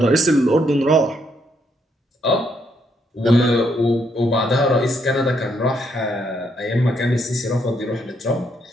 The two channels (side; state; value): both; normal; correlation 0.74